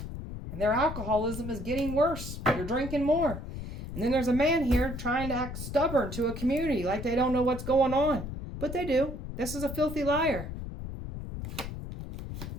And their alcoholism is getting worse. They're drinking more. And then there's a man here trying to act stubborn to a community like they don't know what's going on. But they do. This is a filthy liar.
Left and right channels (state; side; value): noise; left; rumble, 8 dB below the sound